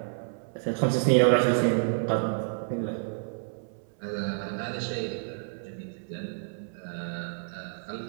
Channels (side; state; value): left; silent; 58 dB below the other